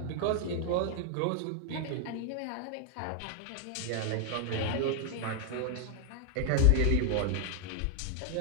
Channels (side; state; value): both; different; correlation 0.00